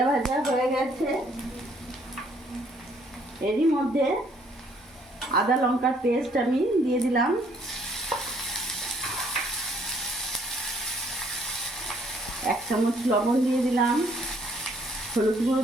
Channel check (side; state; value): both; normal; correlation 0.65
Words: ভাজা হয়ে গেছে, এরই মধ্যে আদা লঙ্কার পেস্ট আমি দিয়ে দিলাম। এক চামচ লবণ দিয়ে দিলাম, হলুদ গুঁড়ো